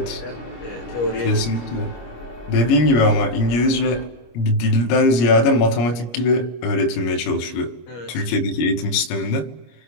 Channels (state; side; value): late; right; 25 ms